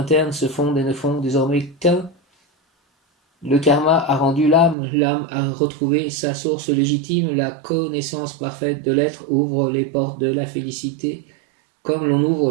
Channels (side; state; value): left; drops out; at 4.8 s